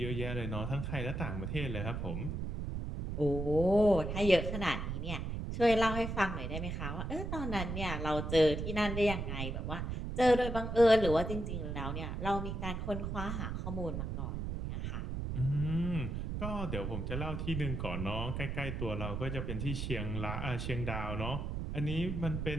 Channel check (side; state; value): right; noise; rumble, 3 dB below the sound